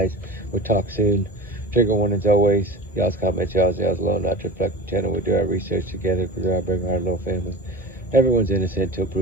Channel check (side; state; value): both; normal; correlation 0.33